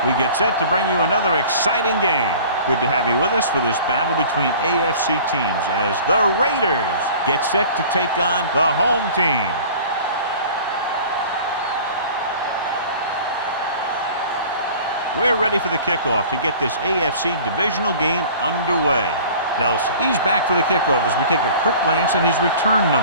we get set to bring you another exciting game. Good to have you with us for this battle between AFC teams as the Raiders get set to take on the home team. We're ready for the kickoff to get this AFC divisional game underway. Nelson, he's back for the kickoff as we take a quick glance at his return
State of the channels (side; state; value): both; inverted; correlation -0.44